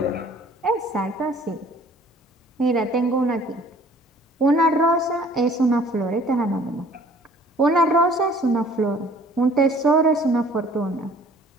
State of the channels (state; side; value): normal; both; correlation 0.54